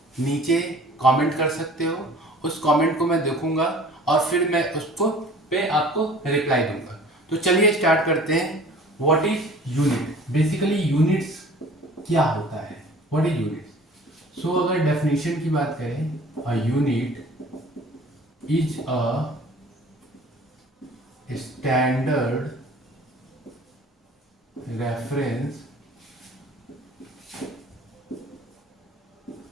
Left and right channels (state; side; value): normal; both; correlation 0.47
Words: नीचे कमेंट कर सकते हो। उस कमेंट को मैं देखूंगा और फिर मैं उसको पे आपको रिप्लाई दूंगा। तो चलिए स्टार्ट करते हैं। What is unit? Basically units क्या होता है? What is units? सो अगर डेफिनेशन की बात करें, a unit is a standard reference